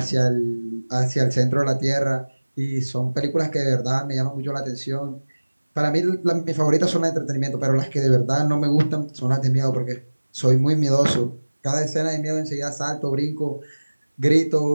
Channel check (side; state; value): both; inverted; correlation -1.00